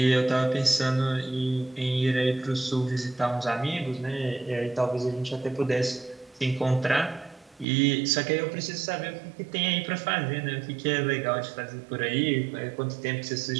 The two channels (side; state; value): left; drops out; at 7.7 s